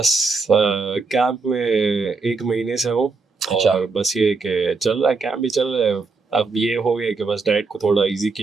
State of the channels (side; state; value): left; quieter; 4.2 dB